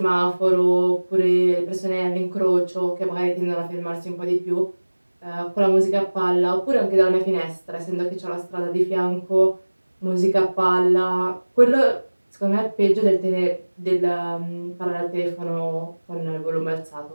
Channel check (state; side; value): inverted; both; correlation -1.00